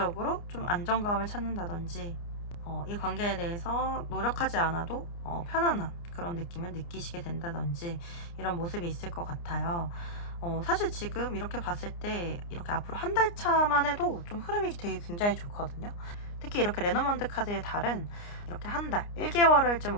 좀 안정감을 찾는다든지, 이 관계에 대해서 노력하지 않아도 편안한 그런 느낌을 느끼시게 된다든지, 이런 모습이 있을 것 같아요. 사실 지금 이렇게 봤을 때 이렇게 앞으로 한 달 차만 해도 좀 흐름이 되게 굉장히 좋거든요. 특히 이렇게 레노먼드 카드의 달은 이렇게 한 달, 1개월을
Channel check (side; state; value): right; late; 29 ms